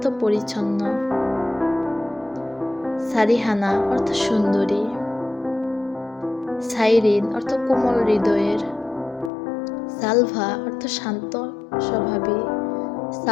পরিচ্ছন্ন। সারিহানা অর্থ সুন্দরী। সাইরিন অর্থ কোমল হৃদয়ের। সালভা অর্থ শান্ত স্বভাবী।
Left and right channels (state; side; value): drops out; right; at 9.3 s